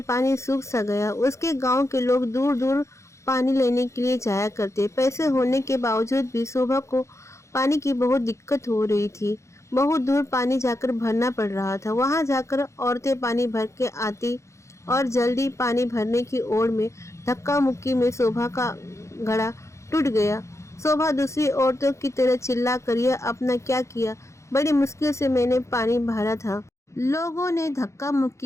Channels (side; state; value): right; late; 0.14 ms